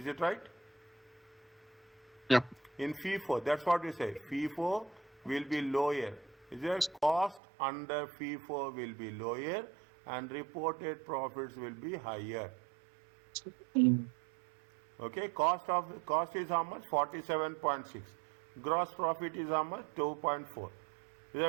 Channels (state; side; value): drops out; left; at 7.4 s